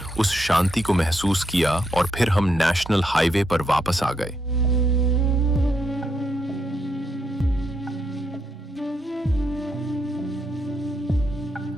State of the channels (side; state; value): both; normal; correlation 0.79